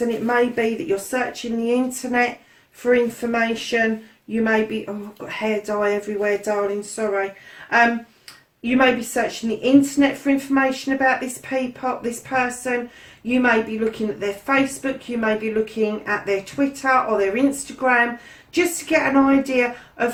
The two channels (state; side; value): identical; both; correlation 1.00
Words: And it may be that you're searching the internet for information. You may be, oh, I've got hair dye everywhere, darling, sorry. You may be searching the internet for information about this person. You may be looking at their Facebook. You may be looking at their Twitter or their Instagram, just to get an idea